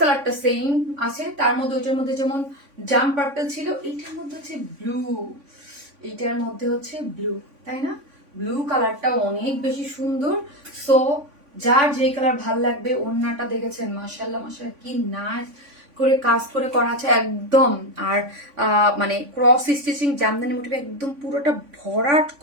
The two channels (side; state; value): left; late; 3.5 ms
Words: সেম আছে, তার মধ্যে ওটার মধ্যে যেমন জাম পার্পল ছিল, এইটার মধ্যে হচ্ছে ব্লু, এইটার মধ্যে হচ্ছে ব্লু, তাই না? ব্লু কালারটা অনেক বেশি সুন্দর। সো যার যে কালার ভাল লাগবে, ওড়নাটা দেখেছেন মাশাআল্লাহ মাশাআল্লাহ কি নাইস করে কাজ করে করা আছে একদম। আর মানে ক্রস স্টিচিং জামদানি মোটিভে একদম পুরোটা ভরাট